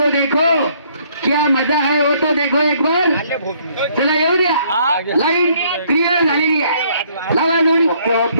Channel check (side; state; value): both; inverted; correlation -0.65